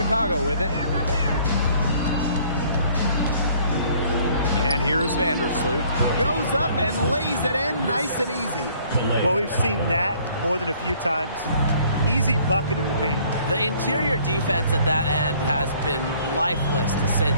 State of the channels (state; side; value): inverted; both; correlation -0.58